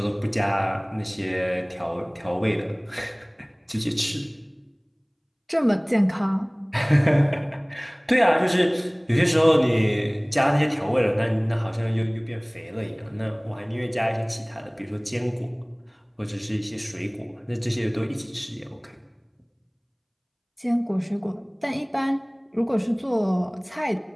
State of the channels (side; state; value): both; identical; correlation 1.00